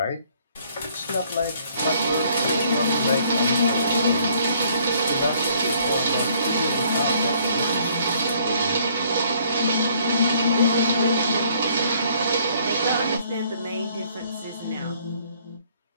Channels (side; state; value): both; inverted; correlation -0.63